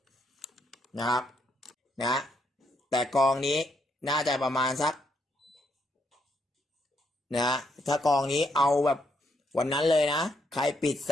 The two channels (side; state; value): both; normal; correlation 0.75